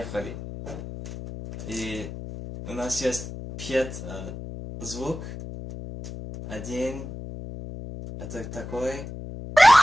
И у нас есть 5 звук. Один, это такой.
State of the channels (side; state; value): left; noise; hum, 10 dB below the sound